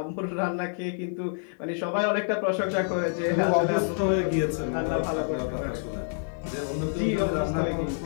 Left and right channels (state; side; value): silent; right; 60 dB below the other